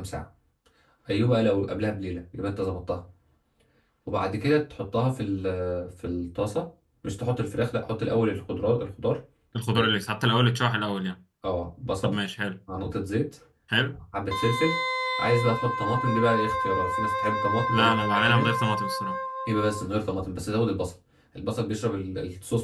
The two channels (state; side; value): identical; both; correlation 1.00